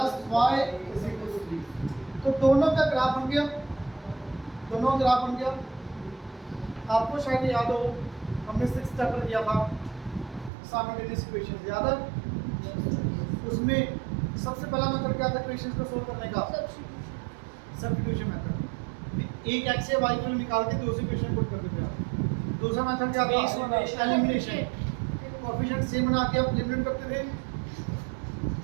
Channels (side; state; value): left; drops out; at 10.5 s